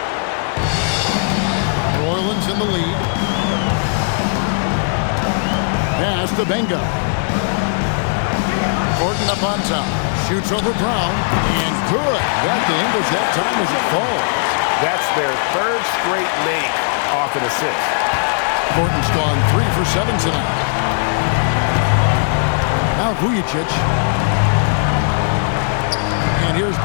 New Orleans in the lead. Pass to Benga. Thornton up on top. Shoots over Brown. And good. Got the English that time as it falls. That's their third straight make off an assist. Thornton's gone 3 for 7 tonight. Now Vujicic. And here's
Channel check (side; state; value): right; silent; 67 dB below the other